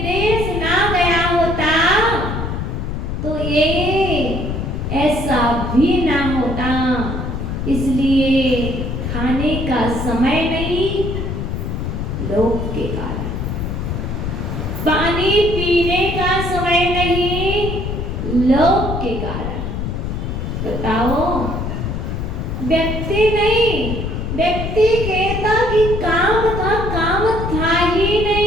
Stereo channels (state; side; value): noise; left; rumble, 3 dB below the sound